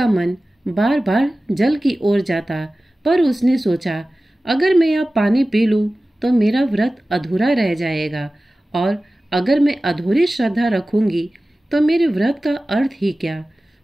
मन बार बार जल की ओर जाता, पर उसने सोचा, अगर मैं अब पानी पी लूं तो मेरा व्रत अधूरा रह जाएगा, और अगर मैं अधूरी श्रद्धा रखूंगी तो मेरे व्रत का अर्थ ही क्या?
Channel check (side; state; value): both; normal; correlation 0.96